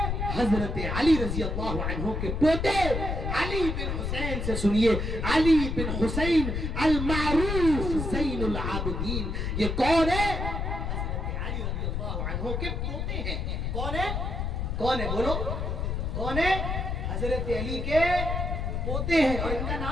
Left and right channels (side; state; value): left; noise; rumble, 2 dB below the sound